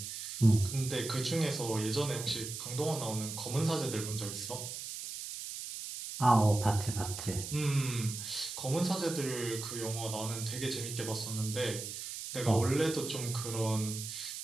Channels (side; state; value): right; noise; hiss, 7 dB below the sound